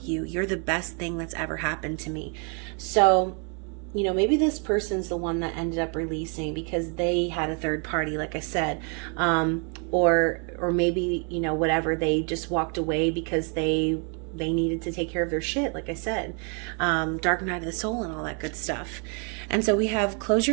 you. You're the best thing that's ever happened to me. So, you know, maybe this person's the one that ended up releasing because they had a third party, like I said, or maybe, you know, whatever, they just walked away because they needed to take care of their shit, like I said, dark night of the soul and all that good stuff. And so we have, close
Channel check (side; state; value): left; quieter; 37.4 dB